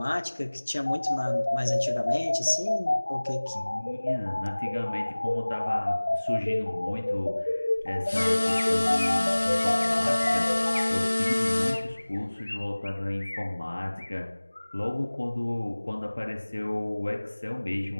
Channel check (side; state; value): both; inverted; correlation -1.00